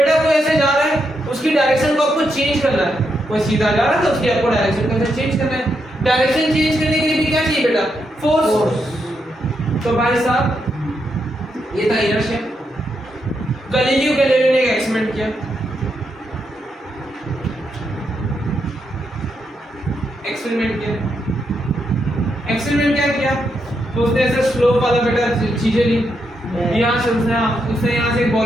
कोई ऐसे जा रहा है उसकी डायरेक्शन को आपको चेंज करना है, कोई सीधा जा रहा है तो उसकी आपको डायरेक्शन को चेंज करना है। डायरेक्शन चेंज करने के लिए भी क्या चाहिए बेटा, फोर्स। तो भाई साहब ये था इनर्शिया। गैलीलियो गैलीलियो ने एक एक्सपेरिमेंट किया, एक्सपेरिमेंट क्या किया, तो उसने ऐसे स्लोप वाला बेटा चीजें ली, यहाँ से उसने यहाँ से एक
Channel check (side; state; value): both; normal; correlation 0.81